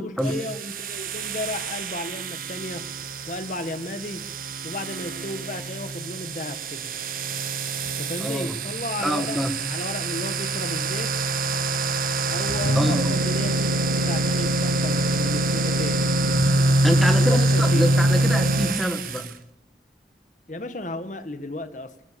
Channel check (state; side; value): normal; both; correlation 0.67